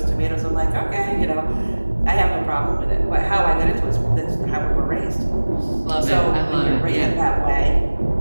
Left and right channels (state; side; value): inverted; both; correlation -1.00